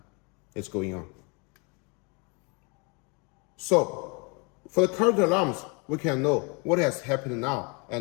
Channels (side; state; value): right; quieter; 31.7 dB